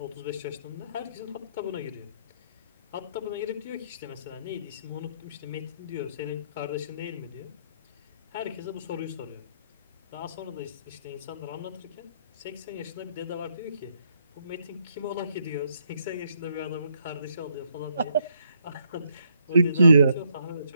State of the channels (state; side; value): inverted; both; correlation -0.74